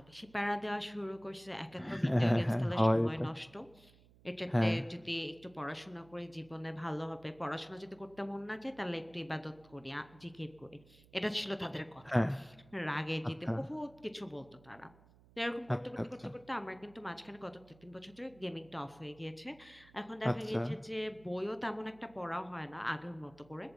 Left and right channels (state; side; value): noise; right; hum, 25 dB below the sound